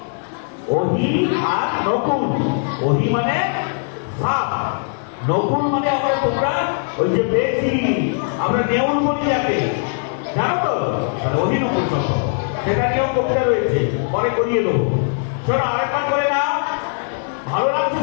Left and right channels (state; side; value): silent; right; digital silence